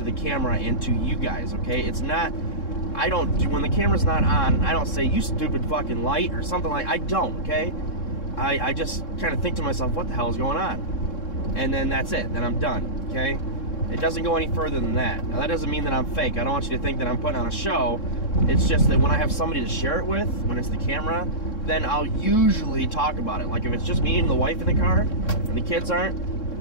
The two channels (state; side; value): late; right; 3.7 ms